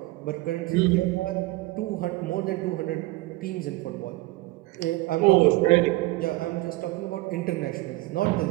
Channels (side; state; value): left; quieter; 20.1 dB